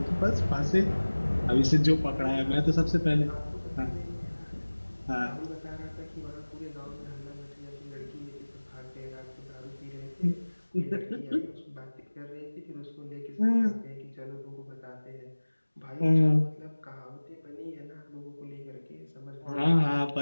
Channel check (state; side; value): inverted; both; correlation -1.00